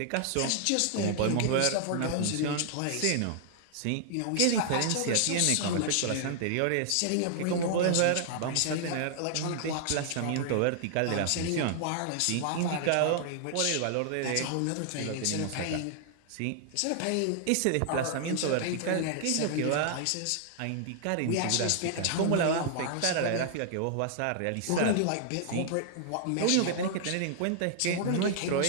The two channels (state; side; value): different; both; correlation -0.01